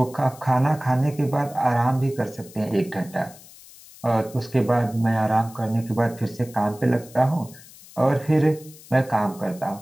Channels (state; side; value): noise; left; hiss, 21 dB below the sound